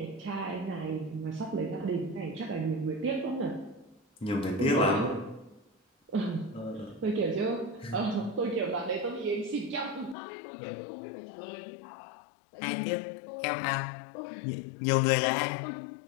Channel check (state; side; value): drops out; right; at 10.2 s